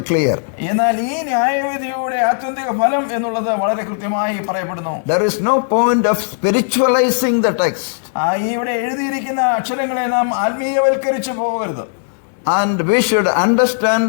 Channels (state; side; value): silent; right; digital silence